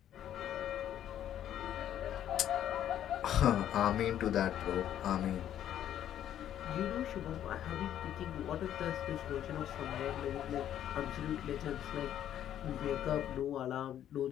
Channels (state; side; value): quieter; right; 10.9 dB